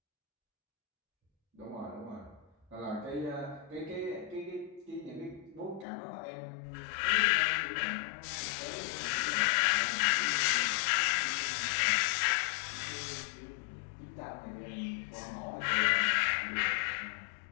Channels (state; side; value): drops out; right; at 5.9 s